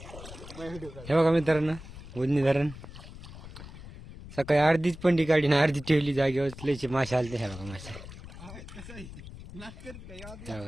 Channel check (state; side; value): noise; left; rumble, 14 dB below the sound